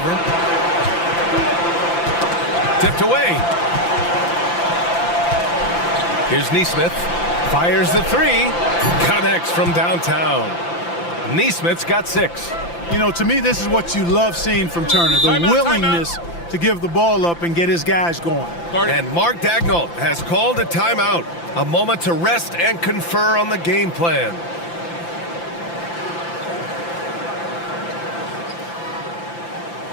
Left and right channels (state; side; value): late; right; 5.9 ms